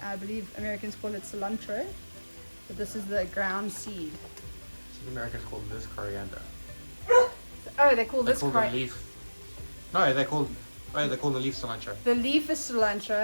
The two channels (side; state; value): both; inverted; correlation -1.00